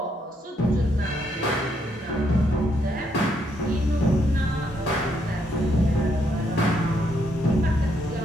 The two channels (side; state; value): both; normal; correlation 0.75